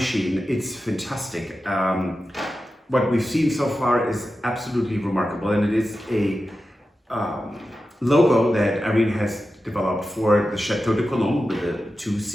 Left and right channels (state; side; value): normal; both; correlation 0.92